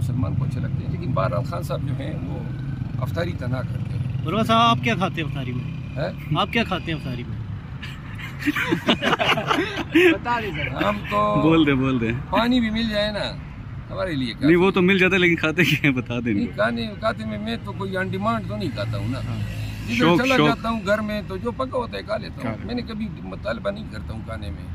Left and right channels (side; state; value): both; identical; correlation 1.00